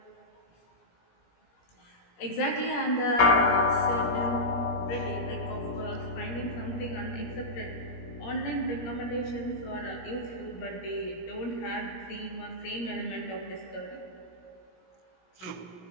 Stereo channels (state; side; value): late; right; 17 ms